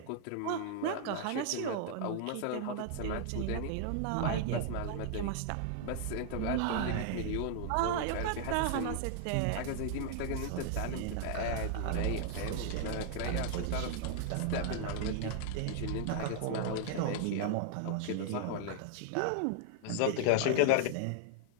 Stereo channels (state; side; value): different; both; correlation 0.00